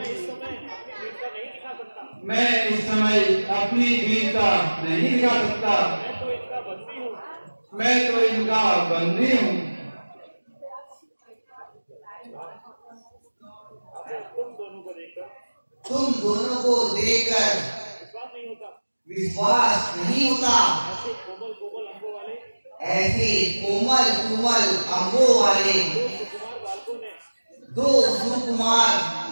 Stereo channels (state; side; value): inverted; both; correlation -1.00